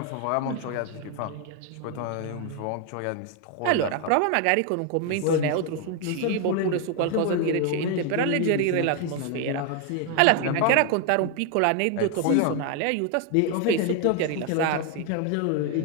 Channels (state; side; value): different; both; correlation 0.01